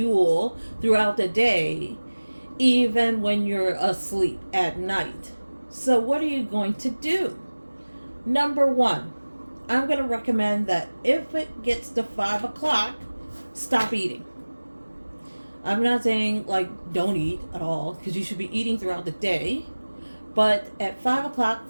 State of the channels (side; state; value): both; inverted; correlation -1.00